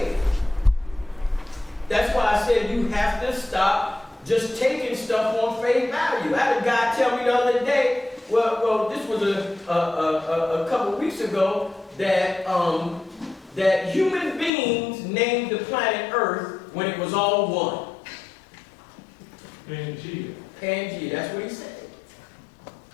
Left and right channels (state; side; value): drops out; right; at 14.5 s